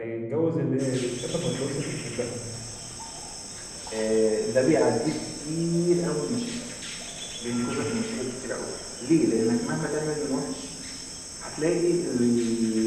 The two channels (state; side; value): identical; both; correlation 1.00